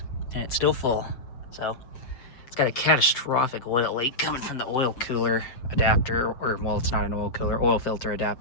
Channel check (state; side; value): late; right; 7.7 ms